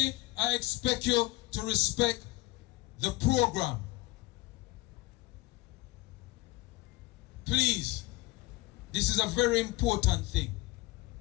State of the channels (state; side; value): quieter; right; 21.1 dB